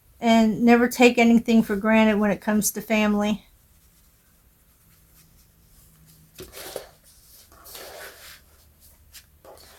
And never take anything for granted when it comes to family.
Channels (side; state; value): both; identical; correlation 1.00